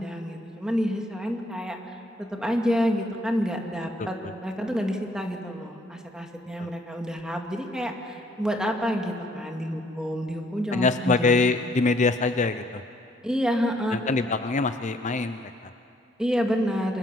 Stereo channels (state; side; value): normal; both; correlation 0.65